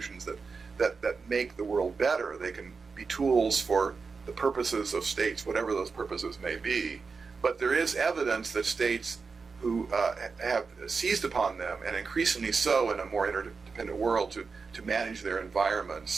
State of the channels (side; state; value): left; quieter; 4.8 dB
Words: that make the world better. They can be tools for the purposes of states, whatever those purposes may be. But there is evidence that states who have seized upon them, and increasingly so in a more interdependent world, to manage their